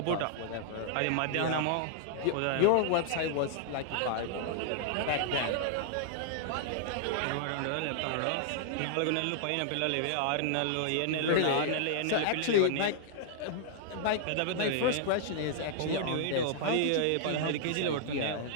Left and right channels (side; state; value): both; different; correlation -0.01